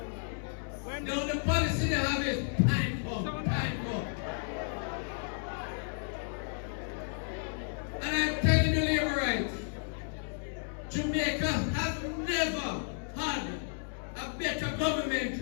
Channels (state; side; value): silent; right; digital silence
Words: Now the policy they have is time bomb, time bomb. And I'm telling you, Labour rights, Jamaica has never had a better